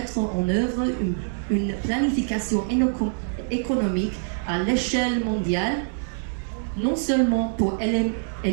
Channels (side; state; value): left; silent; digital silence